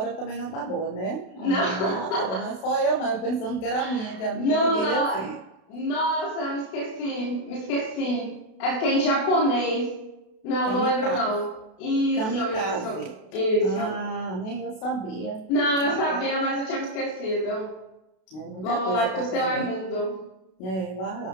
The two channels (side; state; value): right; late; 32 ms